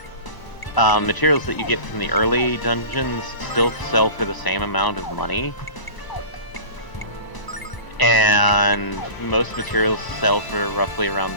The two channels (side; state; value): right; late; 1.0 ms